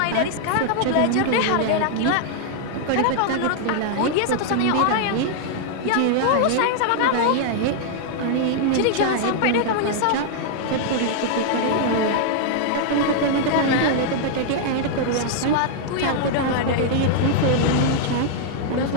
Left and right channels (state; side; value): different; both; correlation -0.01